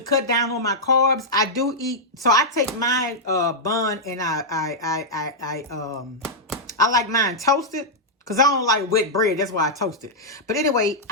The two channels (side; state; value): both; normal; correlation -0.07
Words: cut down on my carbs, I do eat. So I take my bun and I like mine toasted. Because I don't like wet bread. That's why I toast it. But anyway,